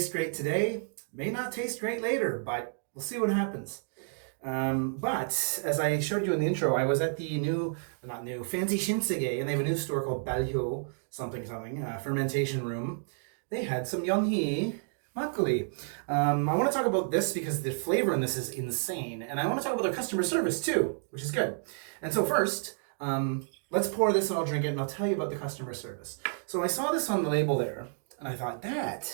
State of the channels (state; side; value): silent; left; digital silence